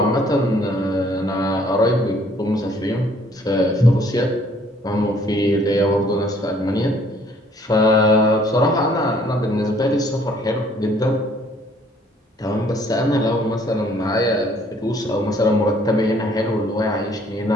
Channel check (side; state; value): both; normal; correlation 0.61